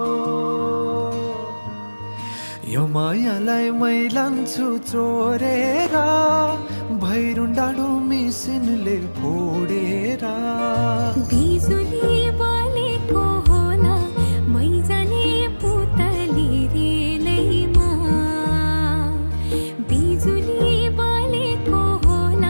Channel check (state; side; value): inverted; both; correlation -1.00